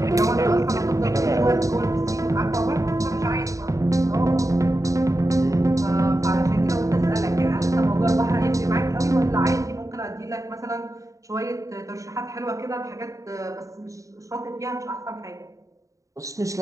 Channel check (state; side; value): late; left; 0.16 ms